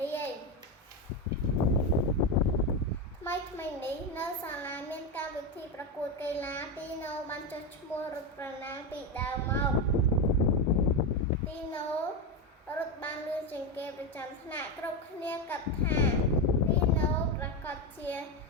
រាយថ្មីនេះនៅសាលាមានកម្មវិធីប្រកួតកីឡាទីណូបានចុះឈ្មោះរត់ប្រណាំងពីដើមមកទីណូរត់បានលឿនជាងគេប្រចាំថ្នាក់គ្រប់គ្នាគិតថាទីណូប្រកាសជា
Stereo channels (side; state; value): both; normal; correlation 0.12